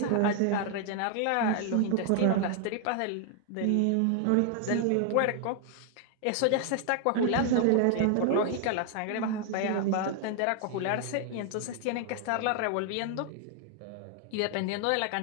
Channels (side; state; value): both; different; correlation 0.00